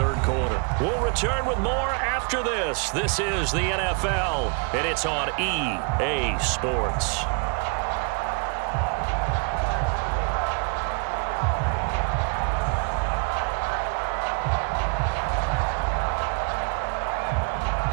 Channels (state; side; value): quieter; left; 35.7 dB